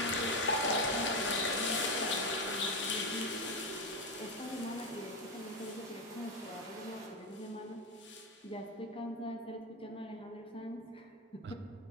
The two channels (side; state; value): both; normal; correlation 0.11